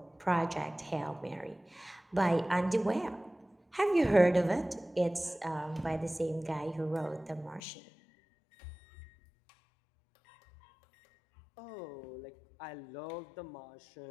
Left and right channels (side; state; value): right; drops out; at 7.6 s